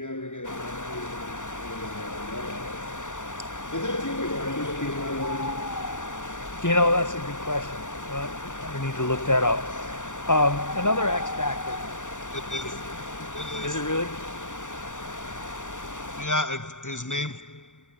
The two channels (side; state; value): right; late; 0.86 ms